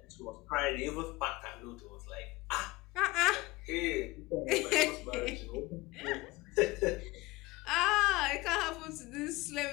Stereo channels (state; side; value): quieter; right; 21.0 dB